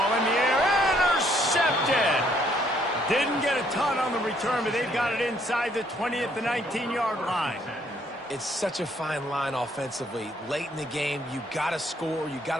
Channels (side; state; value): both; normal; correlation 0.67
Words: in the air, intercepted. Didn't get a ton on the return, but they've got it inside the 20 at the 19-yard line. It's such a fine line offensively. Late in the game, you got to score, you got